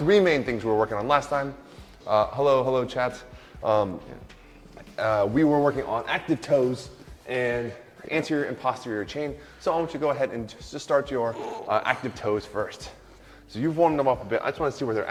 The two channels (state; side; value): identical; both; correlation 1.00